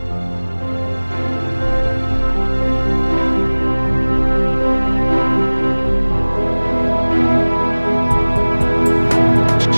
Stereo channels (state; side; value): inverted; both; correlation -1.00